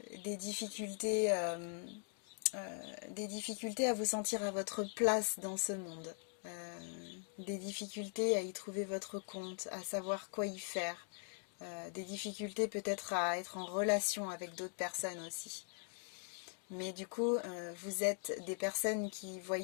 des difficultés à vous sentir à votre place dans ce monde. Des difficultés à y trouver votre compte, à savoir quoi y faire. Des difficultés peut-être à être en relation avec d'autres personnes aussi. Mais du coup, vous êtes des personnes qui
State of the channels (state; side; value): silent; right; 50 dB below the other